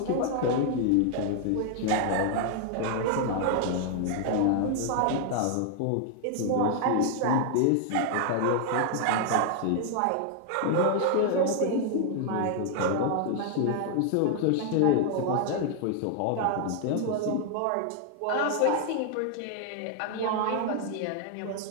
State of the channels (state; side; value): different; both; correlation 0.00